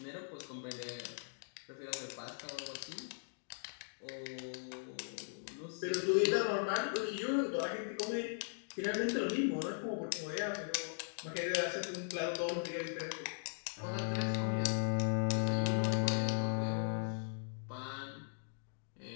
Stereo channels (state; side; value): silent; right; digital silence